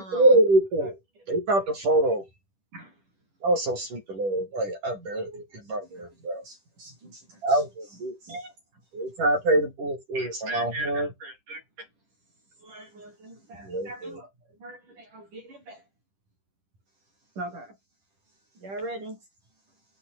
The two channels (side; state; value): left; late; 10 ms